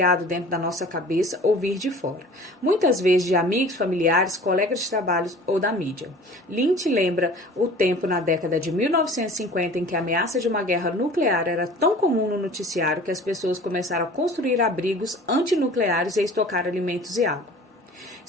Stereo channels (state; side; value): normal; both; correlation 0.44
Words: dentro da nossa cabeça ou vir de fora, muitas vezes de amigos, familiares, colegas de trabalho ou da mídia. Lynch lembra o tempo na década de 1950 em que a ameaça de uma guerra nuclear era tão comum no noticiário que as pessoas começaram a construir abrigos antinucleares e estocar alimentos e água.